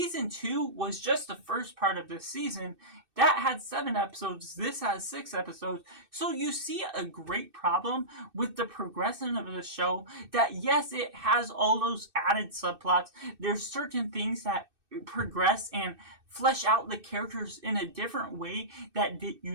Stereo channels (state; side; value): late; left; 2.6 ms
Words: 2 was just the first part of this season. That had 7 episodes. This has 6 episodes. So you see a great problem with the progression of the show that, yes, it has all those added subplots. There's certain things that progress and flesh out the characters in a different way that